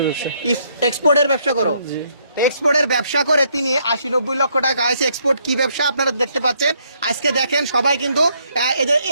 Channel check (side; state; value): both; inverted; correlation -0.71